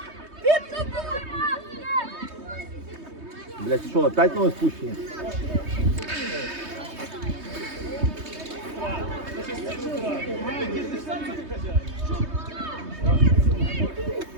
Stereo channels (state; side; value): late; left; 3.2 ms